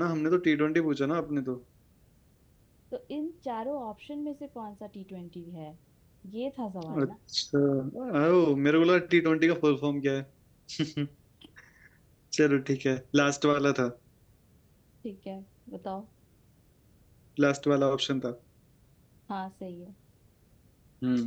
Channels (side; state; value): both; identical; correlation 1.00